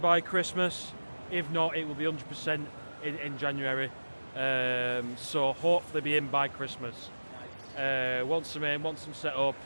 Christmas. If not, it will be 100% in January. So hopefully be in by Christmas. Once I'm in, once I'm set up,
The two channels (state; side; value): inverted; both; correlation -1.00